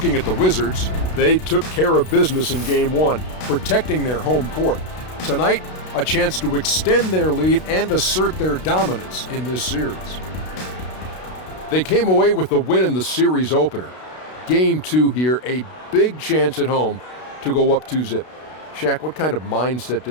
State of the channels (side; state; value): right; late; 32 ms